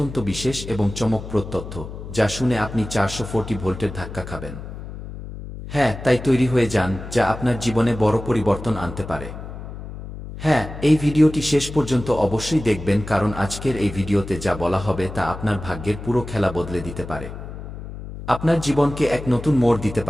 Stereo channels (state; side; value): noise; left; hum, 11 dB below the sound